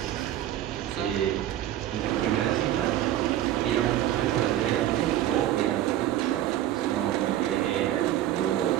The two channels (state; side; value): quieter; left; 12.8 dB